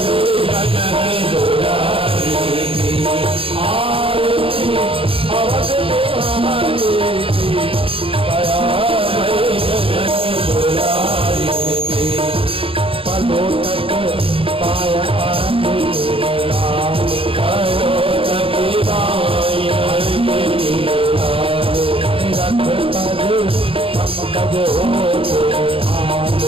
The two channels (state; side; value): late; left; 0.27 ms